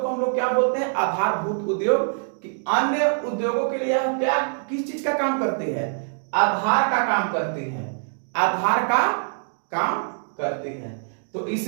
को हम लोग क्या बोलते हैं, आधारभूत उद्योग। कि अन्य उद्योगों के लिए क्या, किस चीज का काम करती है, आधार का काम करती है, आधार का काम करती है। तो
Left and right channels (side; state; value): left; silent; digital silence